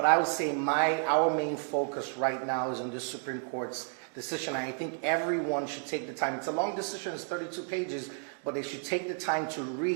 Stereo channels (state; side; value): silent; left; 55 dB below the other